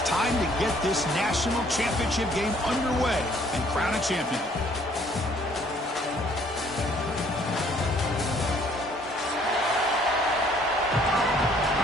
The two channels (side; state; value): both; normal; correlation 0.61